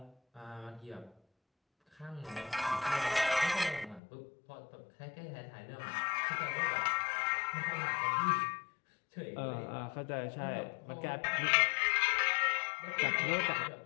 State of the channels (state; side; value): drops out; right; at 4.0 s